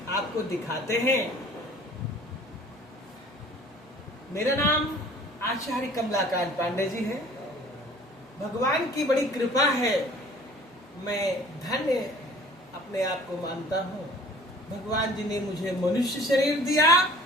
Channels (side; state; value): both; normal; correlation 0.49